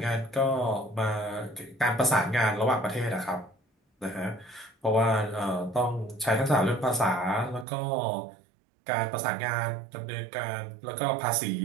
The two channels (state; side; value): drops out; left; at 7.7 s